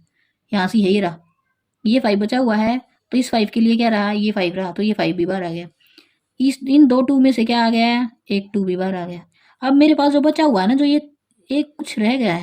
यहाँ से यही रहा, ये 5 बचा हुआ है, तो इस 5 के लिए क्या रहा, ये 5 रहा, तो ये 5 भी बाहर आ गया। इस इन 2 2 में से क्या आ गया, एक 2 भी बाहर आ गया। अब मेरे पास जो बचा हुआ है ना, जो ये एक कुछ रह गया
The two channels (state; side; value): identical; both; correlation 1.00